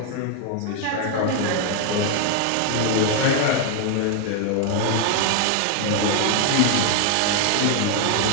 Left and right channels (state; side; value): different; both; correlation 0.00